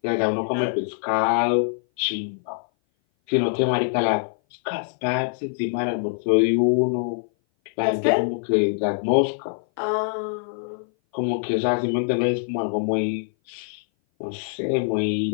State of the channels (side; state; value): right; silent; 58 dB below the other